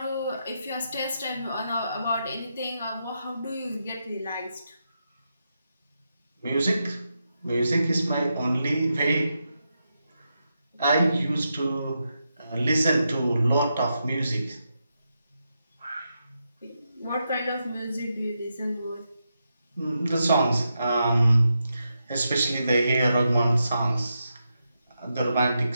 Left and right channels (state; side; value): inverted; both; correlation -0.85